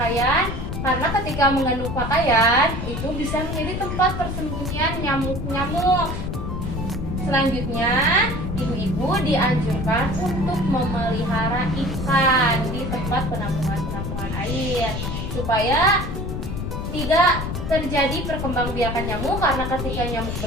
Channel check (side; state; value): left; noise; rumble, 4 dB below the sound